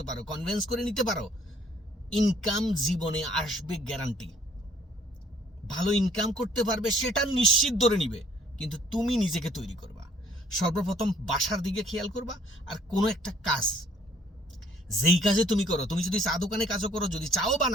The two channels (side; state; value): both; normal; correlation 0.60